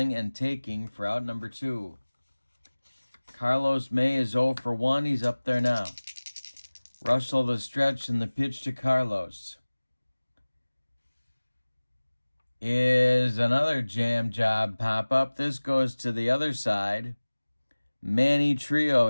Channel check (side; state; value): both; inverted; correlation -1.00